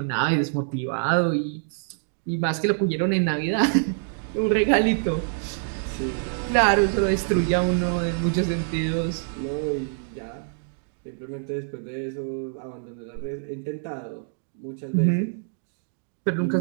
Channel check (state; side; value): silent; left; digital silence